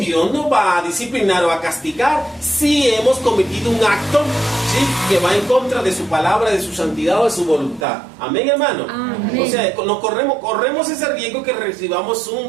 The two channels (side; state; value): left; drops out; at 7.9 s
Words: nos va a disciplinar o a castigar si hemos cometido un acto, ¿sí?, que va en contra de su palabra, de su santidad o de su voluntad. Amén, hermano. Amén. O sea, nos corremos ese riesgo que recibamos un